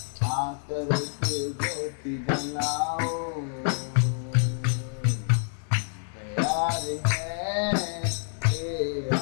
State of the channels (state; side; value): silent; right; digital silence